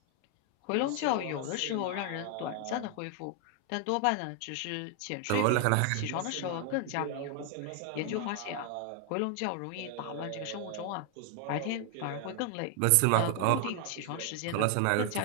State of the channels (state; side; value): different; both; correlation 0.00